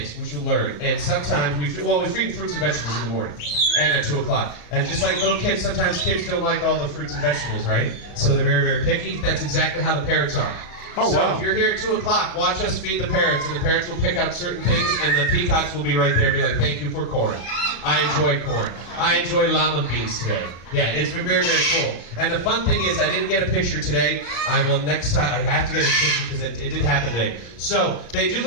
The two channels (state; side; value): late; right; 34 ms